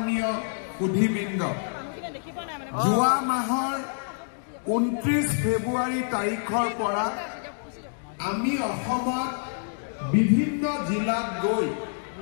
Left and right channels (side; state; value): right; silent; digital silence